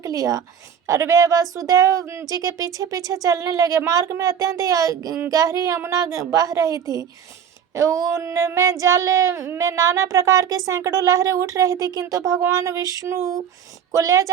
लिया और वे वसुदेव जी के पीछे पीछे चलने लगे। मार्ग में अत्यंत गहरी यमुना बह रही थी। उनमें जल में नाना प्रकार के सैकड़ों लहरें उठ रही थी, किंतु भगवान विष्णु को ले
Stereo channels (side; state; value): left; quieter; 8.2 dB